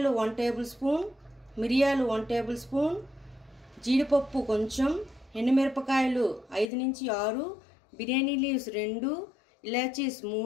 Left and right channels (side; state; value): right; drops out; at 6.7 s